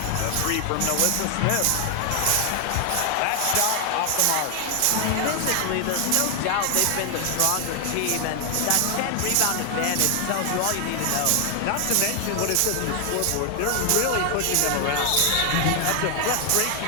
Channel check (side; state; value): both; different; correlation 0.00